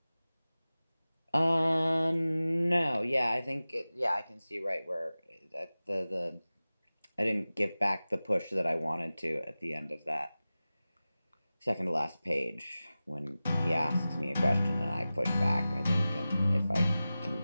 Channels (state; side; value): inverted; both; correlation -0.96